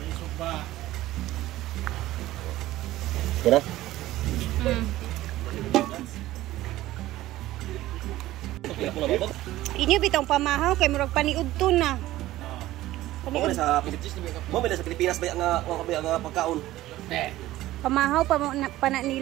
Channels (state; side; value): quieter; left; 15.8 dB